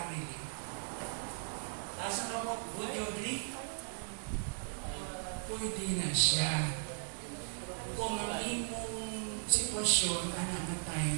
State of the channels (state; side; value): silent; left; digital silence